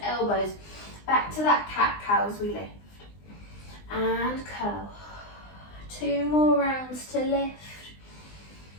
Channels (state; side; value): late; right; 20 ms